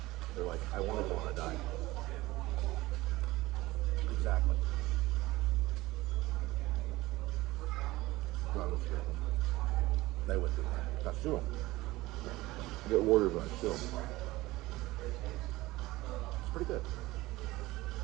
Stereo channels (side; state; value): left; quieter; 19.0 dB